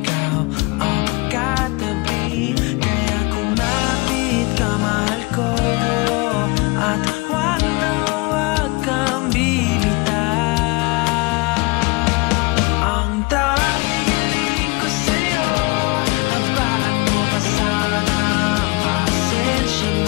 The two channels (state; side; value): quieter; right; 26.3 dB